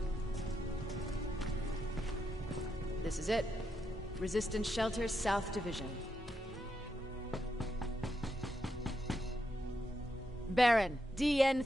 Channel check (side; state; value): both; normal; correlation 0.83